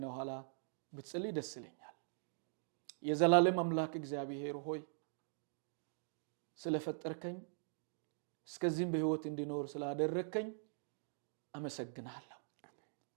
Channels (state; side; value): silent; left; digital silence